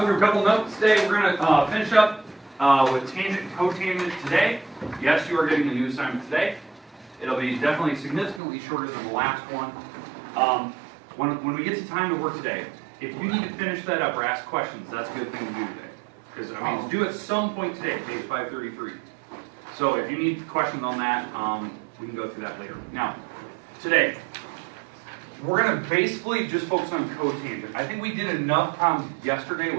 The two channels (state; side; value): drops out; left; at 8.4 s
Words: a couple notes today. We're going to finish up with tangent and cotangent today. Yes, you are getting a new assignment today. It'll be definitely significantly shorter than the last one. When we get to time to work today, if you need to finish that up or ask questions, that's a good thing to do today. Because, I mean, it's due at some point today, page 533. So if you need questions on that, we can go through that later. Now, today, we're going to basically just focus on cotangent. I think we did enough problems yesterday